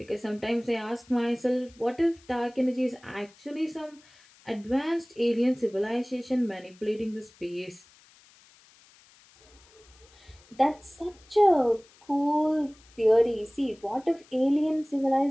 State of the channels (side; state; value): left; noise; hiss, 28 dB below the sound